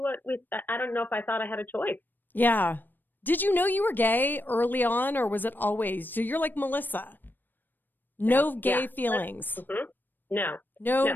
I don't know if I thought I had a choice. Yeah. Did you know you were gay early on, or was it always? So you're like Melissa. No gay feelings. Mm-hmm. No,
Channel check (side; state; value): right; late; 0.092 ms